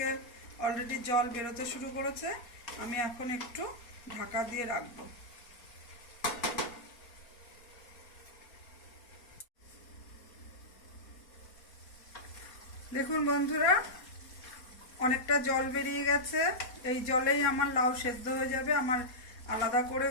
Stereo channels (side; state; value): right; late; 4.1 ms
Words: অলরেডি জল বেরোতে শুরু করেছে। আমি এখন একটু ঢাকা দিয়ে রাখব। দেখুন বন্ধুরা, অনেকটা জল বেরিয়ে গেছে। এই জলেই আমার লাউ সেদ্ধ হয়ে যাবে। আমার আলাদা করে